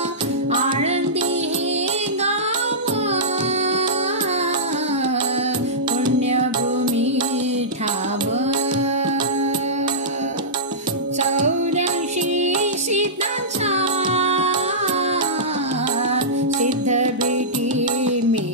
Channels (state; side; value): normal; both; correlation -0.16